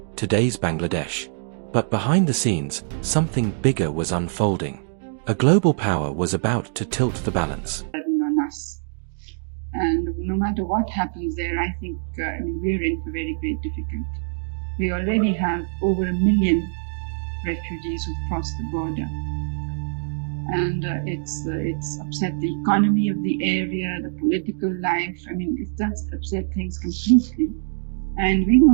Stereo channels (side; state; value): left; silent; digital silence